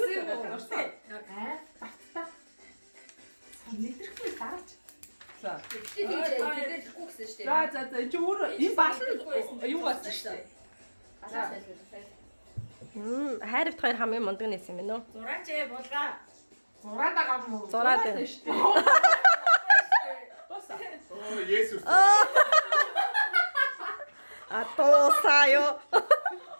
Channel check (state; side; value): inverted; both; correlation -1.00